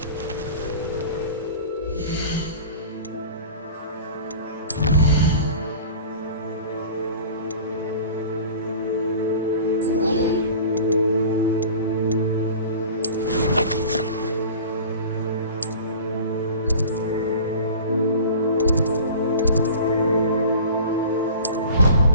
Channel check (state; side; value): inverted; both; correlation -0.40